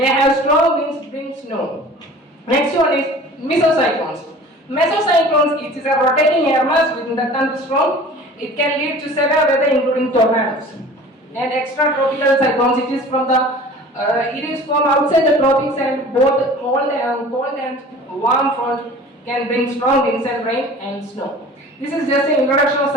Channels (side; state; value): both; normal; correlation 0.43